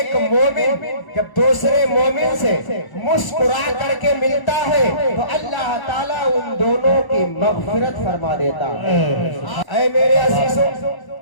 مومن جب دوسرے مومن سے مسکرا کر کے ملتا ہے تو اللہ تعالیٰ ان دونوں کی مغفرت فرما دیتا ہے۔ اے میرے عزیزوں،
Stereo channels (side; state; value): right; late; 1.0 ms